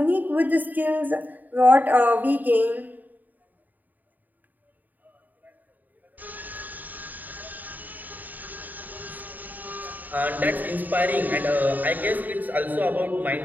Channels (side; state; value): left; late; 0.085 ms